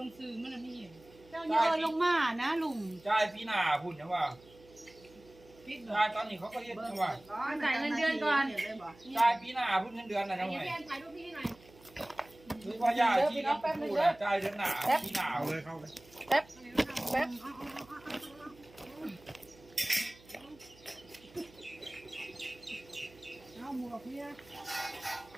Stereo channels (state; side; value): noise; right; hum, 24 dB below the sound